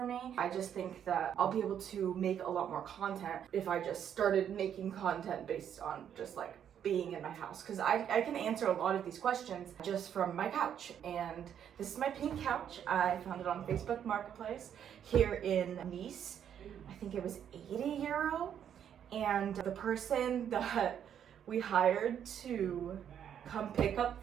me. I just think that I'll be able to make a lot more content if I just started making content based on just like being in my house, because I can answer a lot of these questions just from my couch. And this is my pink couch. I found it on Facebook Marketplace here in Nice. I think it was 80 euro, and the person that we hired to come pick up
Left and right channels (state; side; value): quieter; left; 9.1 dB